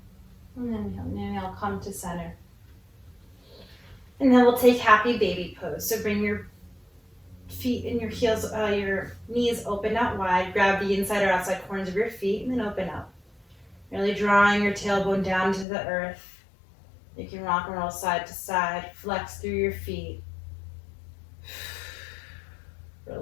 And then inhale, come to center. And then we'll take happy baby pose. So bring your feet and your heels, your knees open out wide. Grab the inside or outside corners of your feet and then open up. Really drawing your tailbone down to the earth. You can rock and roll side to side. Flex through your feet.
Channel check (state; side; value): drops out; right; at 15.7 s